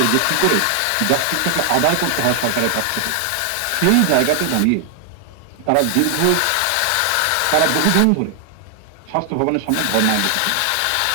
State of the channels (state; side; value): different; both; correlation 0.00